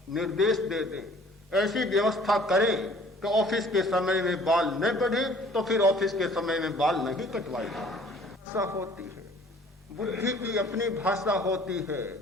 निर्देश दे दें, ऐसी व्यवस्था करें कि ऑफिस के समय में बाल न बढ़े तो फिर ऑफिस के समय में बाल नहीं कटवाए। भाषा होती है, बुद्धि की अपनी भाषा होती है।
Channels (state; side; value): normal; both; correlation 0.53